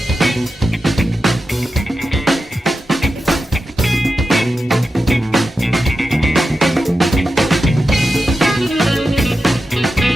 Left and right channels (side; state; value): both; normal; correlation 0.90